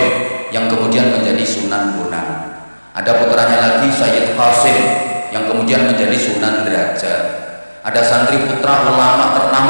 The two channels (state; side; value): inverted; both; correlation -1.00